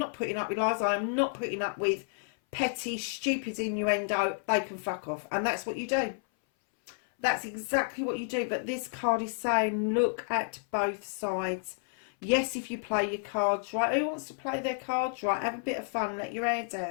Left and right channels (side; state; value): right; silent; 57 dB below the other